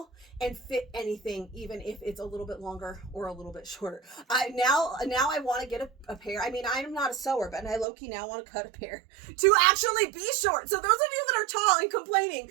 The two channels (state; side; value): drops out; left; at 7.9 s